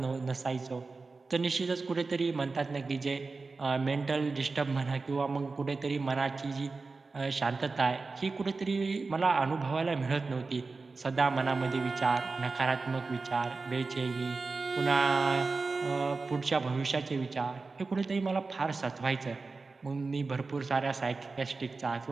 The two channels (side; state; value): left; quieter; 4.0 dB